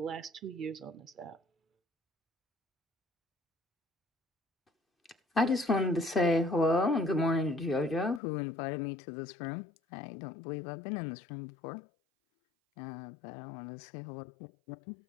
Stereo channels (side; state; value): right; drops out; at 8.2 s